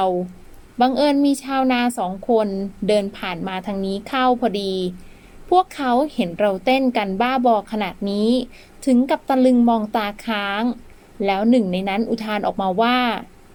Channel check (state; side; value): identical; both; correlation 1.00